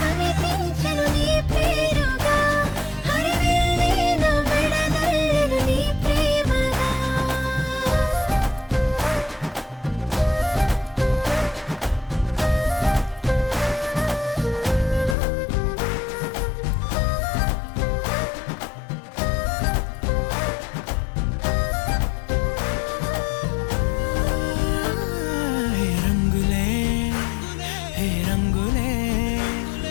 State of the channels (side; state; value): right; drops out; at 15.2 s